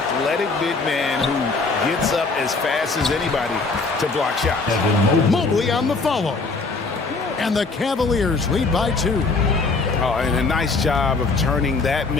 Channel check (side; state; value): right; quieter; 4.0 dB